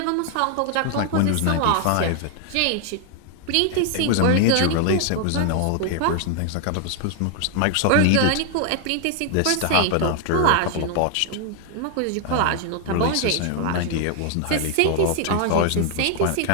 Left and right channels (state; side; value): different; both; correlation 0.00